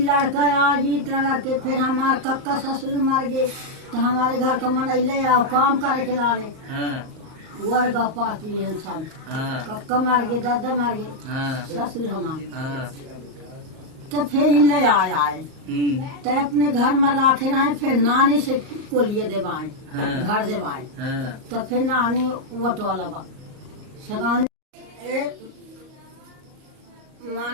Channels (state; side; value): late; left; 38 ms